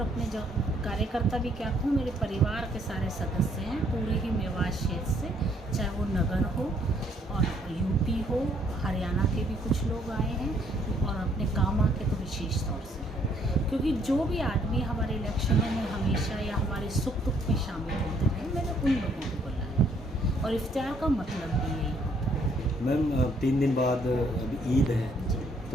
अपने जो कार्यकर्ता भी क्या कहूँ, मेरे परिवार के सारे सदस्य हैं पूरे ही मेवात क्षेत्र से, चाहे वो नगर हो और यूपी हो, हरियाणा के भी कुछ लोग आए हैं और अपने कामा के तो विशेष तौर से, क्योंकि जो भी आदमी हमारे इलेक्शनों में हमेशा या हमारे सुख दुख में शामिल होते रहे, मैंने उन लोगों को बुलाया और इफ्तियार का मतलब भी यही होता है। मैम 3 दिन बाद अभी ईद है,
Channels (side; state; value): both; normal; correlation 0.66